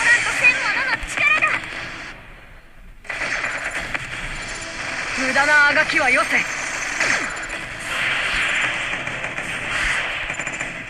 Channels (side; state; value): both; identical; correlation 1.00